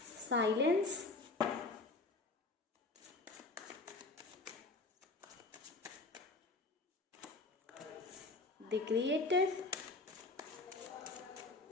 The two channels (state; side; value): quieter; right; 3.4 dB